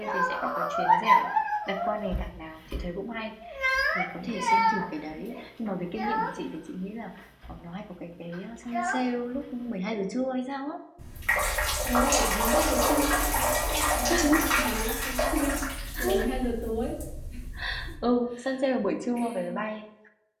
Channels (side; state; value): both; identical; correlation 1.00